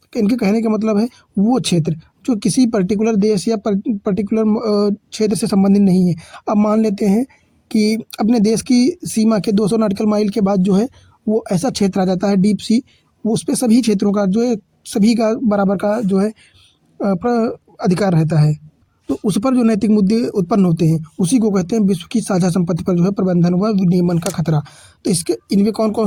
इनके कहने का मतलब है वो क्षेत्र जो किसी पर्टिकुलर देश या पर्टिकुलर क्षेत्र से संबंधित नहीं है। अब मान लेते हैं कि अपने देश की सीमा के 200 नॉटिकल माइल के बाद जो है वो ऐसा क्षेत्र आ जाता है डीप सी, वो उस पे सभी क्षेत्रों का जो है सभी का बराबर का जो है अधिकार रहता है। तो उस पर जो नैतिक मुद्दे उत्पन्न होते हैं उसी को कहते हैं विश्व की साझा संपत्ति पर जो है प्रबंधन व विनियमन का खतरा। तो इसके इनमें कौन कौन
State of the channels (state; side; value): identical; both; correlation 1.00